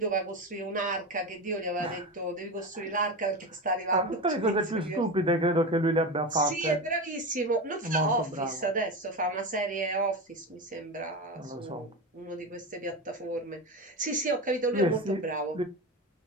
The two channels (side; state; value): both; normal; correlation 0.21